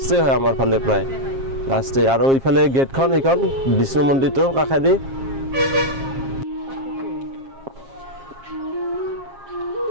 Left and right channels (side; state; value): left; late; 7.4 ms